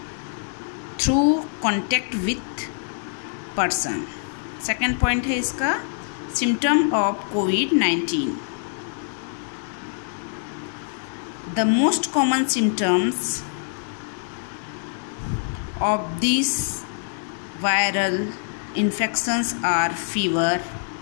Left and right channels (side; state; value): right; silent; 62 dB below the other